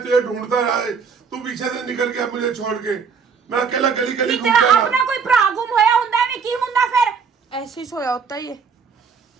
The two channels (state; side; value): quieter; left; 5.9 dB